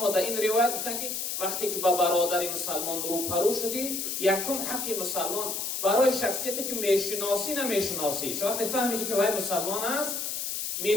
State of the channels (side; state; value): left; noise; hiss, 3 dB below the sound